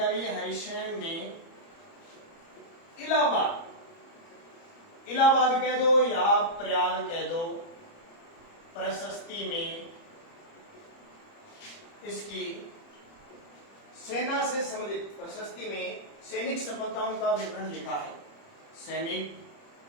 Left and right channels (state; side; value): late; right; 30 ms